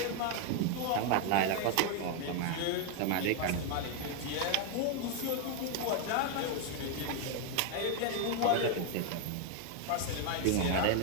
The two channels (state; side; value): different; both; correlation 0.01